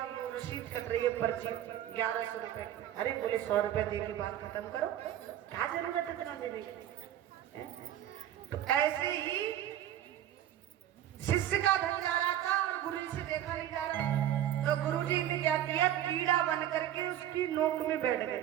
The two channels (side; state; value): left; quieter; 11.8 dB